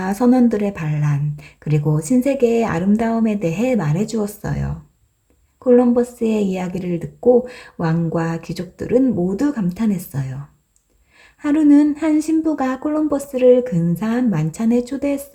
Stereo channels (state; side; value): identical; both; correlation 1.00